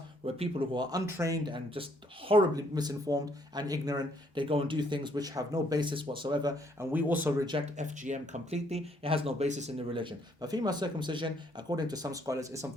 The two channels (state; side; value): normal; both; correlation 0.68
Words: where people who are untrained and just horribly misinformed and ignorant, they go and do things which have no basis whatsoever, and we also reject FGM completely. It has no basis in the religion. But female circumcision, according to some scholars, is